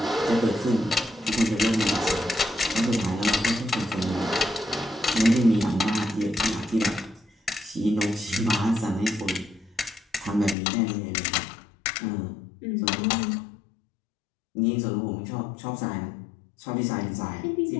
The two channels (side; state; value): right; drops out; at 10.6 s